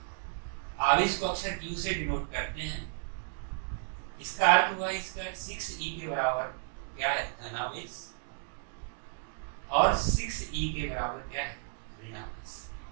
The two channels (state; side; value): silent; left; digital silence